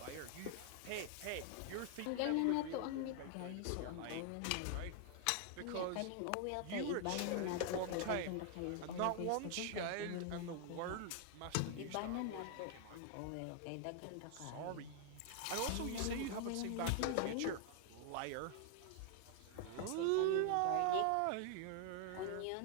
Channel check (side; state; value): both; different; correlation 0.00